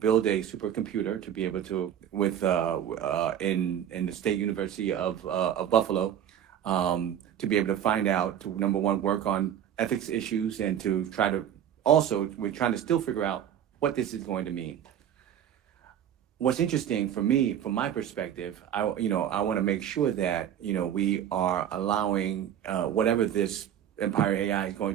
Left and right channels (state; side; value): quieter; left; 9.9 dB